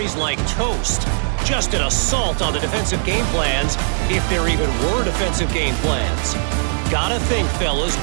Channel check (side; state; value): left; silent; digital silence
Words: like toast. Just an assault on the defensive game plans, if there even were defensive game plans. Gotta think, fellas,